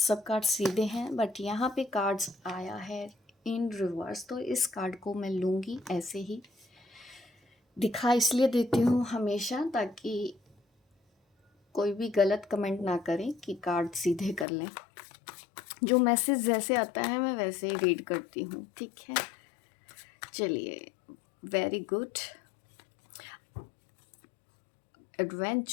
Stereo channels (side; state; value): right; drops out; at 14.5 s